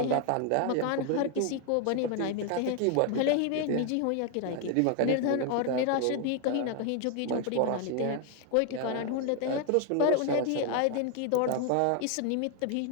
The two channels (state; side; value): different; both; correlation 0.01